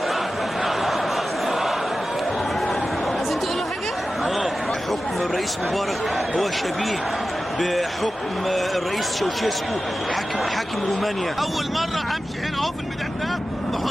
عايزين تقولوا حاجه؟ حكم الرئيس مبارك هو شبيه بحكم الرئيس شوشيسكو حاكم رومانيا. اول مره امشي هنا اهو في الميدان ده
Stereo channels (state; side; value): normal; both; correlation 0.94